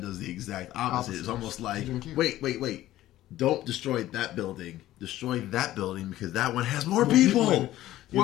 does the exact opposite. It's almost like, wait. Don't destroy that building. Destroy that building because that one has more people.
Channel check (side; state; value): right; quieter; 14.6 dB